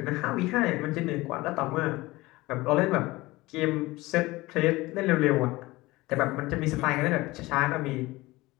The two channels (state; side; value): quieter; right; 20.1 dB